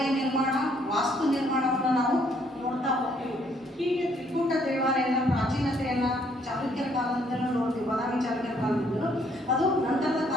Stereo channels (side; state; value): both; normal; correlation 0.67